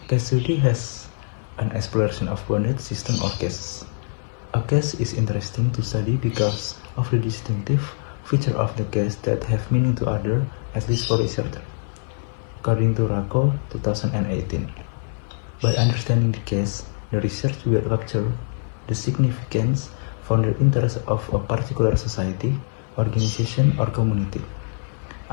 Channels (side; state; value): right; silent; 63 dB below the other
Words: Case study has an exploration of bounded system or cases. A case is interesting to study because of the distinctive feature of the case that have meaning to others, at least for researcher. According to Rako 2018. By understanding the case, the research will capture the significance for the interest of a particular society, organization, or community.